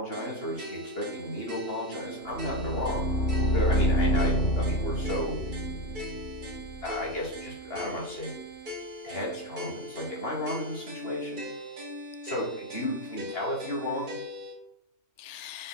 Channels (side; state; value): right; late; 2.9 ms